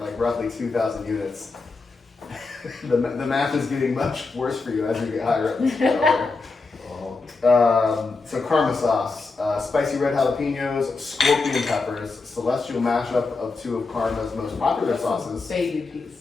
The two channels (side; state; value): right; quieter; 4.0 dB